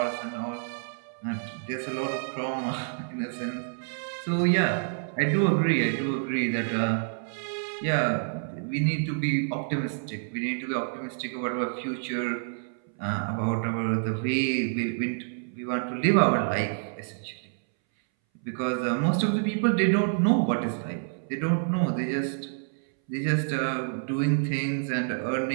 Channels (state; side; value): silent; left; 59 dB below the other